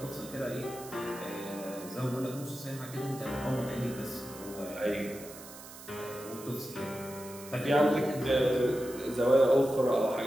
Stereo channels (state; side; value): noise; right; hiss, 16 dB below the sound